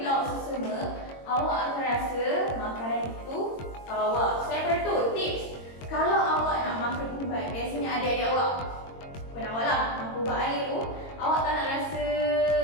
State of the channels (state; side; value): late; right; 22 ms